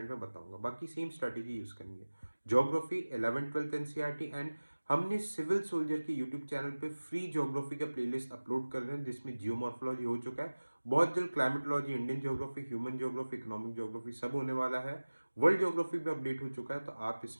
में बताऊंगा, बाकी सेम स्ट्रेटेजी यूज करनी है। Geography 11th 12th NCERT, and हमने सिविल सोल्जर के यूट्यूब चैनल पे फ्री ज्योग्राफी का प्लेलिस्ट अपलोड कर रहे हैं, जिसमें जियोमॉर्फोलॉजी हो चुका है, बहुत जल्द climatology, Indian geography, human geography, economic geography सब होने वाला है। वर्ल्ड ज्योग्राफी भी अपडेट हो चुका है, तो आप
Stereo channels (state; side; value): inverted; both; correlation -1.00